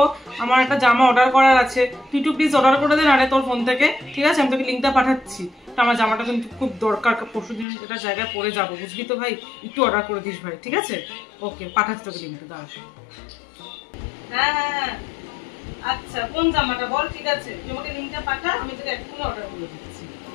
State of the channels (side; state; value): right; drops out; at 7.7 s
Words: আমার একটা জামা অর্ডার করার আছে, তুই একটু প্লিজ অর্ডার করে দে না রে তোর ফোন থেকে, ঠিক আছে? আমি তোকে লিঙ্কটা পাঠাচ্ছি। আমার জামাটা কিন্তু খুব দরকার, পরশুদিন এটা জায়গায় পরে যাবো, বুঝলি তো ভাই। একটু অর্ডার করে দিস ভাই, ঠিক আছে? ওকে, পাঠাচ্ছি তোকে লিঙ্কটা, দাঁড়া। হ্যাঁ হ্যাঁ হ্যাঁ, আচ্ছা কোন জামাটা বল? ঠিক আছে, তুই আমাকে লিঙ্কটা পাঠা, আমি তোকে এক্ষুনি অর্ডার করে দিচ্ছি।